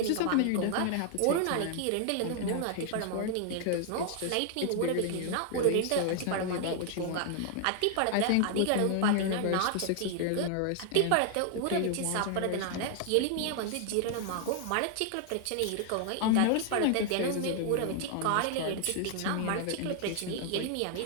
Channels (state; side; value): different; both; correlation 0.00